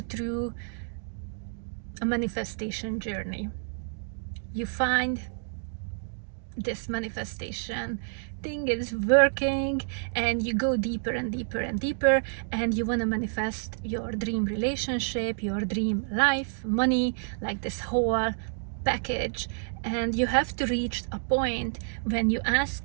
through a manifestation journey, you find this manifestation thing is working, and you go deeper and deeper and deeper, and you want to manifest your dream relationship, your dream life, money, like this whole package. And you have to reach a point when you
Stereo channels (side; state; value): left; silent; digital silence